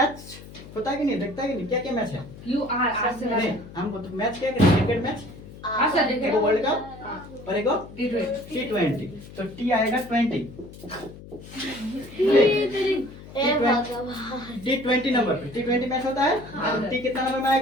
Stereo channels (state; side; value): noise; left; hum, 16 dB below the sound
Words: होता है कि नहीं, देखता है कि नहीं, क्या क्या मैच है? यू आर आर से नहीं, हमको तो मैच क्या है? क्रिकेट मैच, एक वर्ल्ड कप और एक T20। तो टी आएगा 20, T20 नंबर पे T20 मैच होता है। और टी कितना नंबर में